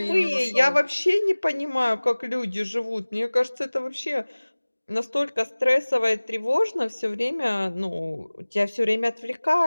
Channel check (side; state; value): both; inverted; correlation -1.00